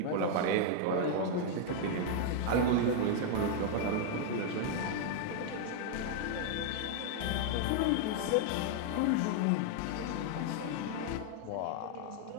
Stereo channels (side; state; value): both; different; correlation 0.00